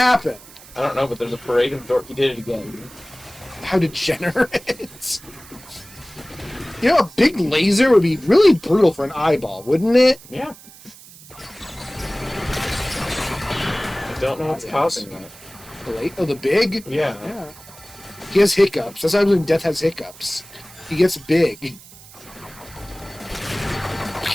I don't know, but there's a parade of dorks. He did it again. How degenerate. You know, a big laser would be really brutal for an eyeball, wouldn't it? Yeah. I don't know what's causing that. Oh, the big? Yeah. Yeah. He has hiccups. That's why when Death has hiccups. He gets big.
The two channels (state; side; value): noise; right; hiss, 20 dB below the sound